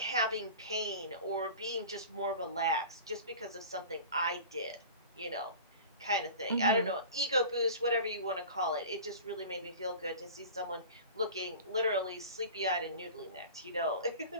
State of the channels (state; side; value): inverted; both; correlation -0.38